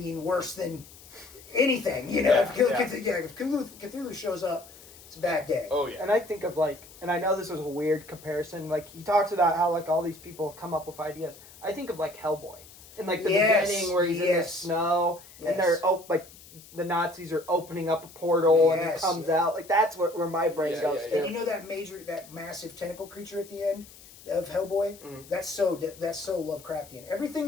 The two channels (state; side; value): noise; left; hiss, 21 dB below the sound